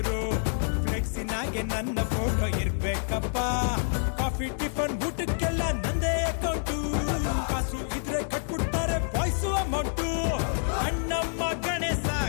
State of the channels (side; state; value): right; silent; digital silence